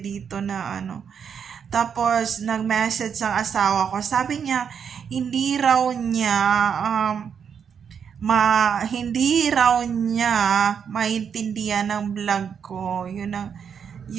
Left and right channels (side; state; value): left; quieter; 7.3 dB